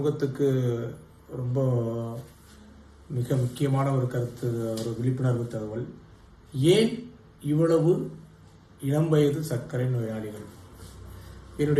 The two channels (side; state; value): both; identical; correlation 1.00